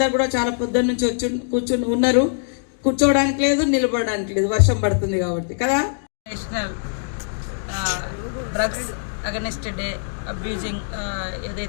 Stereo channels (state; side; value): silent; right; digital silence